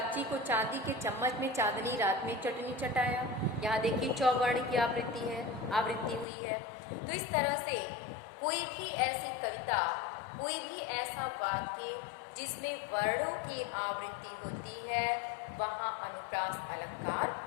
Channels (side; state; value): right; drops out; at 6.2 s